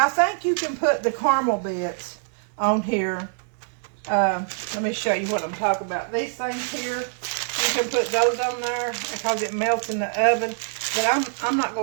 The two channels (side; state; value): left; silent; 62 dB below the other